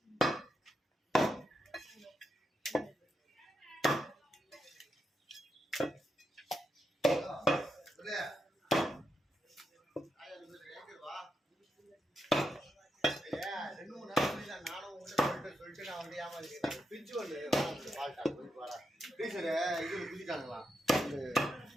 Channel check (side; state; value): both; normal; correlation 0.84